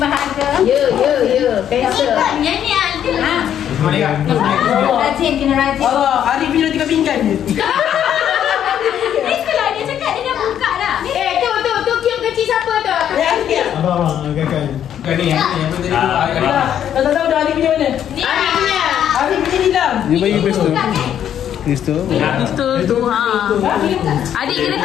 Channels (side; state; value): right; quieter; 9.9 dB